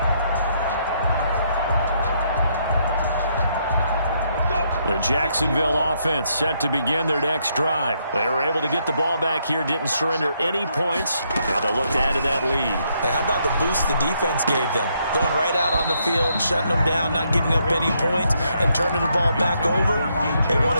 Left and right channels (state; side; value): inverted; both; correlation -0.74